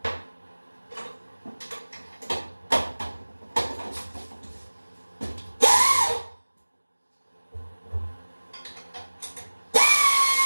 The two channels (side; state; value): both; inverted; correlation -1.00